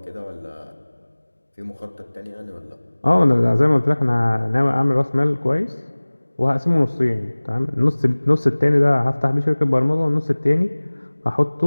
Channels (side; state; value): both; inverted; correlation -1.00